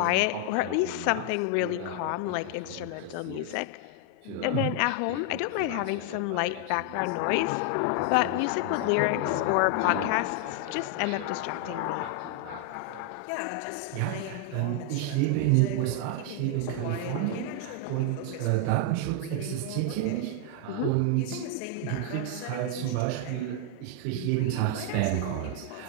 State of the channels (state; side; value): different; both; correlation 0.00